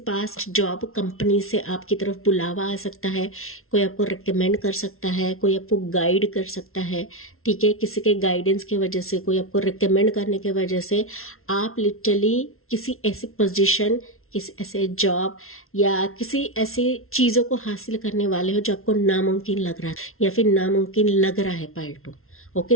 पास्ट जॉब कंपनी से आपकी तरफ बुलावा आ सकता है, कोई आपको रिकमेंड कर सकता है, कोई आपको गाइड कर सकता है, ठीक है। किसी के गाइडेंस की वजह से, कोई आपको रिकमेंड करने की वजह से आप लिटरली किसी ऐसी पोजीशन, किसी ऐसे जॉब या किसी ऐसी चीज़ों को हासिल करने वाले हो जो आपको नामुमकिन लग रहा है या फिर नामुमकिन लग रहा है पाइल 2। ओके,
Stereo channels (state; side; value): late; right; 0.62 ms